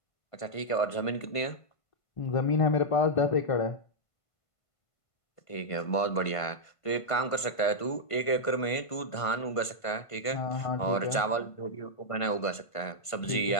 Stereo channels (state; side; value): late; right; 1.5 ms